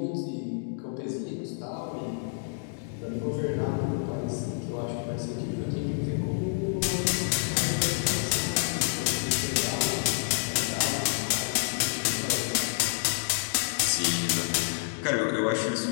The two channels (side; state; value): right; silent; digital silence